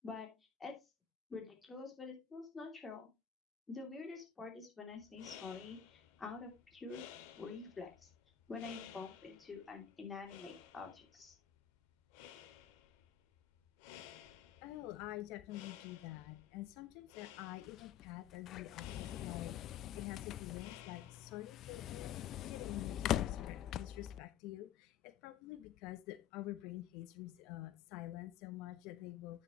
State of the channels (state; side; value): quieter; right; 9.6 dB